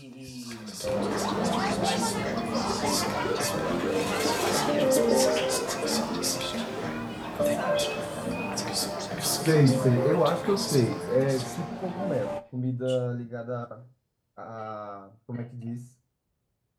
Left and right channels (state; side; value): identical; both; correlation 1.00